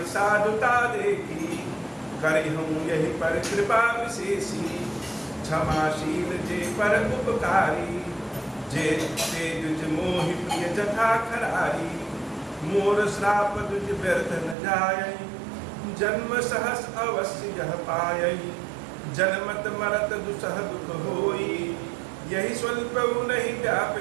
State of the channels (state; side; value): drops out; left; at 14.6 s